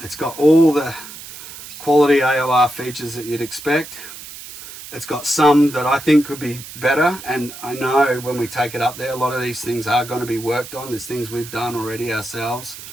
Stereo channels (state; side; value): noise; right; hiss, 14 dB below the sound